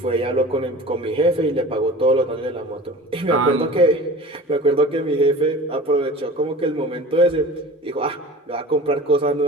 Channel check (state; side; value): normal; both; correlation 0.39